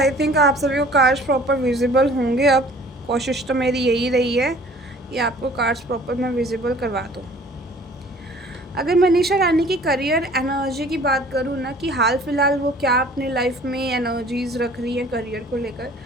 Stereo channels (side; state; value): both; normal; correlation 0.51